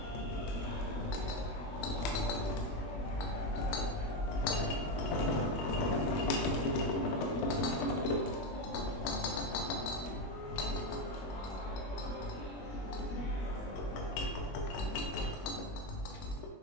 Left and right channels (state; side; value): late; right; 21 ms